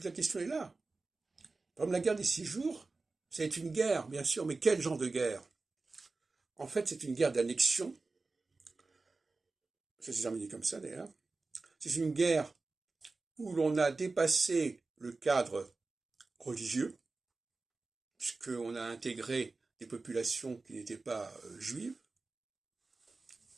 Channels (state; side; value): quieter; left; 3.7 dB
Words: la question est là. Par exemple, la guerre des 6 jours, c'est une guerre, bien sûr, mais quel genre de guerre? En fait, c'est une guerre d'annexion. Ça s'est terminé comme ça, d'ailleurs. C'est une guerre où l'on a dépassé le cadre religieux, puisqu'on a intégré des populations qui n'étaient pas juives.